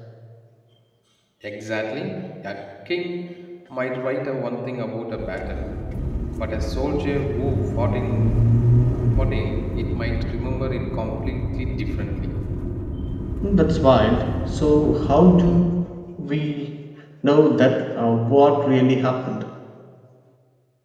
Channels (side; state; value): both; identical; correlation 1.00